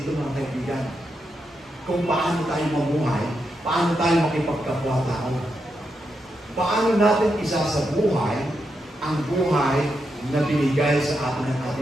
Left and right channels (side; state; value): both; normal; correlation 0.84